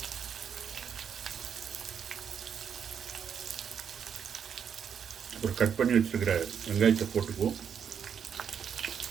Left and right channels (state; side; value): quieter; left; 7.7 dB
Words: ஒரு கட் பண்ணி வச்சுருக்கிற வெங்காயத்தை போட்டுக்குவோம்.